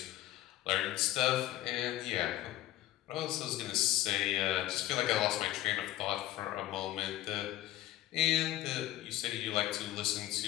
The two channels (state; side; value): quieter; right; 14.7 dB